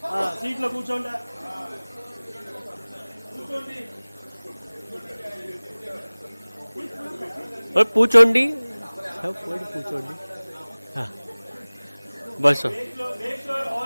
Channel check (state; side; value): inverted; both; correlation -1.00